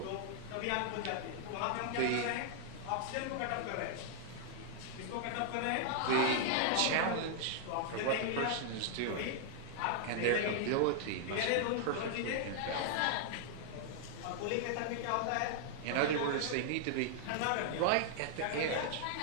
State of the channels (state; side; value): different; both; correlation -0.01